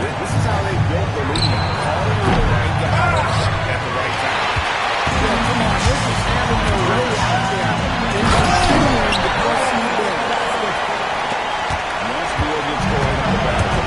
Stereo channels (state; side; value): identical; both; correlation 1.00